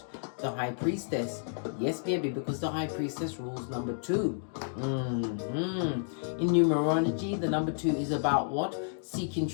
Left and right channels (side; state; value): right; silent; digital silence